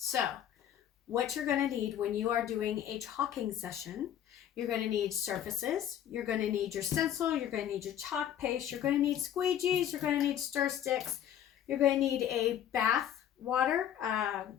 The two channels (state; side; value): quieter; right; 10.4 dB